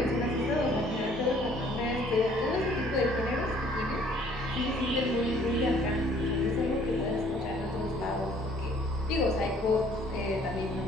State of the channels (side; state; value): both; normal; correlation 0.58